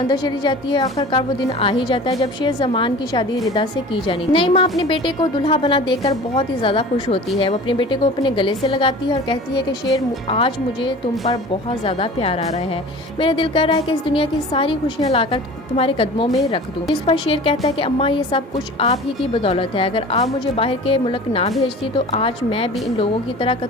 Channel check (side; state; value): both; normal; correlation 0.40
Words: चली जाती है। आखिरकार वो दिन आ ही जाता है जब शाहजमान की शादी रिदा से की जानी थी। नई माँ अपने बेटे को दुल्हा बना देखकर बहुत ही ज्यादा खुश होती है। वो अपने बेटे को अपने गले से लगाती है और कहती है कि शेर, आज मुझे तुम पर बहुत ज्यादा प्यार आ रहा है। मेरा दिल कर रहा है कि इस दुनिया की सारी खुशियाँ लाकर तुम्हारे कदमों में रख दूं। इस पर शेर कहता है कि अम्मा, ये सब कुछ आप ही की बदौलत है। अगर आप मुझे बाहर के मुल्क ना भेजती तो आज मैं भी इन लोगों की तरह